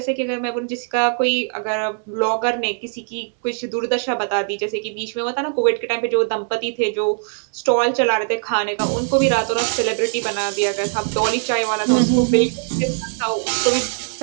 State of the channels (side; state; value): left; silent; 65 dB below the other